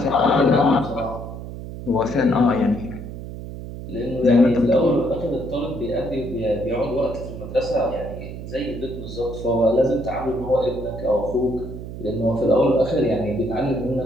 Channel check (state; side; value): noise; right; hum, 10 dB below the sound